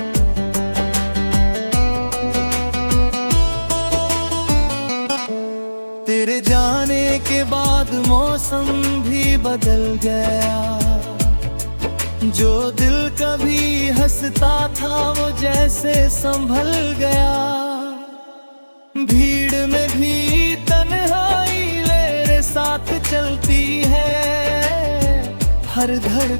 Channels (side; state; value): both; inverted; correlation -1.00